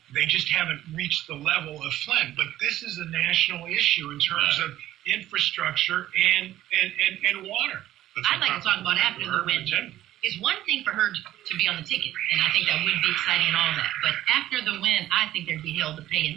They just haven't reached the level of Flint. But this is a national issue in terms Right. of infrastructure and water. I'd like to talk about after the urban win. agenda. It's one thing for her to be on the ticket, and I think that would be exciting and all that. But after the win, I think there'd be hell to pay,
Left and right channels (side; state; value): left; quieter; 13.7 dB